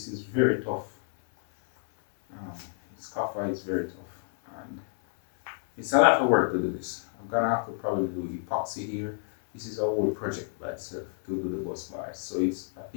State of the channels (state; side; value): silent; right; digital silence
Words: is very tough. This copper is very tough, and it's a lot of work to do this. I'm gonna have to probably do epoxy here. This is a whole project by itself to do the bus bars. So I